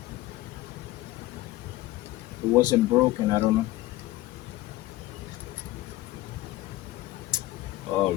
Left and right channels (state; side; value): quieter; right; 17.4 dB